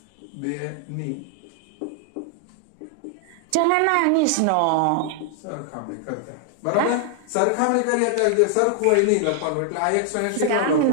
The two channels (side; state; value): both; different; correlation 0.00